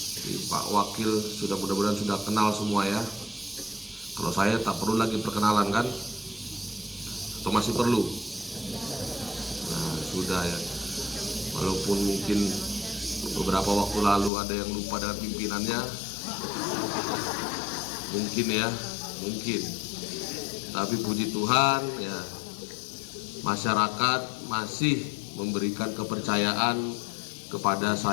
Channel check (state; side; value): drops out; right; at 14.3 s